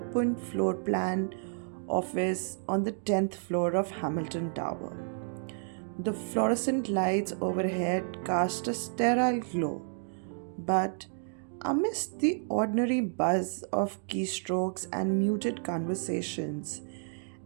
floor plan office on the 10th floor of Hamilton Tower. The fluorescent lights overhead cast a sterile glow, but amidst the ordinary buzz of keystrokes and muted conversations,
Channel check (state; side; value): silent; left; digital silence